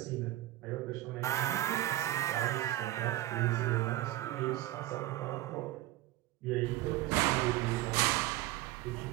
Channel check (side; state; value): left; quieter; 16.1 dB